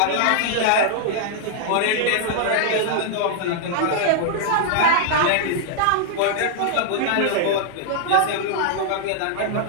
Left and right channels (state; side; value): different; both; correlation 0.00